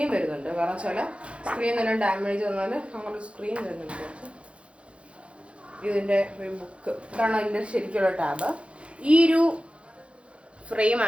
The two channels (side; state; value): left; late; 0.060 ms